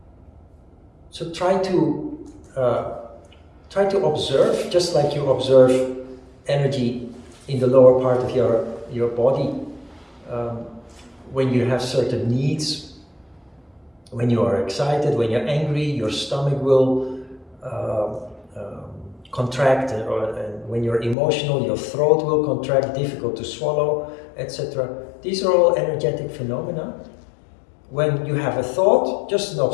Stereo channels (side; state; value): right; drops out; at 21.2 s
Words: So try to observe, just like you observe energy in the lower part of your body. When you have certain needs, when you are excited, when you're angry, your stomach will contract, and when you're emotional, your throat will contract, difficult to swallow, etc. These are all energetic phenomena. When you have a thought, just an